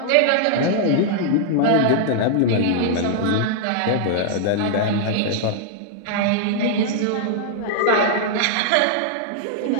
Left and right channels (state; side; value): different; both; correlation -0.01